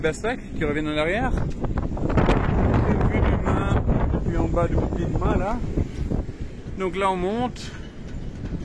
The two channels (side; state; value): both; identical; correlation 1.00